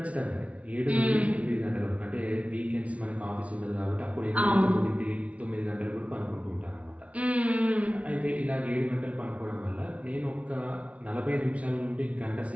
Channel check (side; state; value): left; late; 0.065 ms